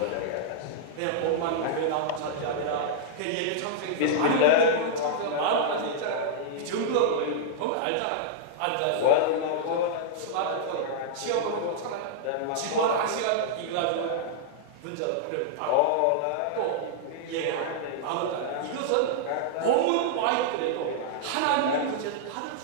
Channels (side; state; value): both; different; correlation -0.01